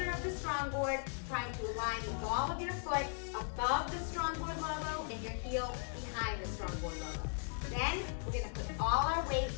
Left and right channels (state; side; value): silent; right; 52 dB below the other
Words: of the StrongBoard, trying to align the ball of your foot above the StrongBoard logo and your heel behind the StrongBoard logo. Then we're going to put all our weight